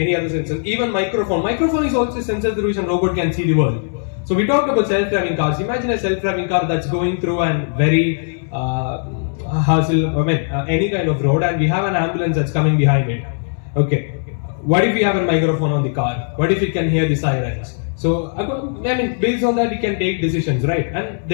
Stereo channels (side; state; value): right; silent; 66 dB below the other